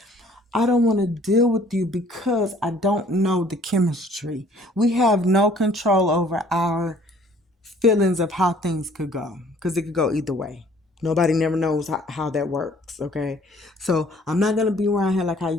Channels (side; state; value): both; normal; correlation 0.57